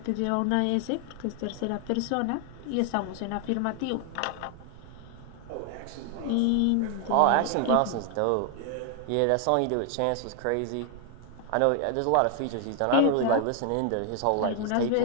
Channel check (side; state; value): both; different; correlation 0.00